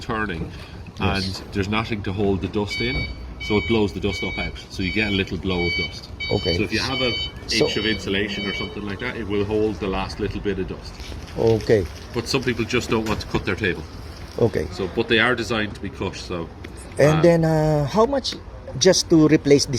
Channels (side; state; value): both; identical; correlation 1.00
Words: and there's nothing to hold the dust in, so it blows the dust up out. So you get a little blow of dust. Okay. So if you have an inch of insulation or something like that, it will hold the last little bit of dust. Okay. But some people just don't want to cut their table. Okay. So, but they are designed to be cut. So, And then how much just to replace